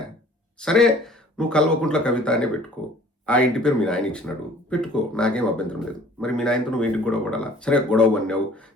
సరే, నువ్వు కల్వకుంట్ల కవిత అనే పెట్టుకో. ఆ ఇంటి పేరు మీ నాయన ఇచ్చినాడు, పెట్టుకో, నాకేం అభ్యంతరం లేదు. మరి మీ నాయనతో నువ్వు ఇంటికి గొడవ పడాలా? సరే, గొడవ పడినావు,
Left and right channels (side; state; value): both; normal; correlation 0.52